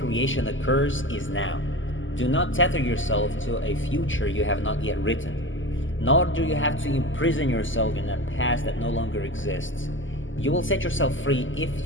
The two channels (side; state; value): right; late; 0.56 ms